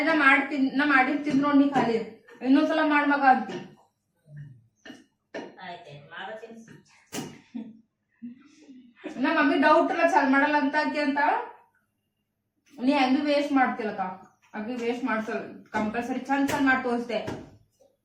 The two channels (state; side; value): identical; both; correlation 1.00